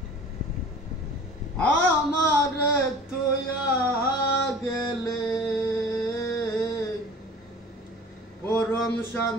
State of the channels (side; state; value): both; normal; correlation 0.43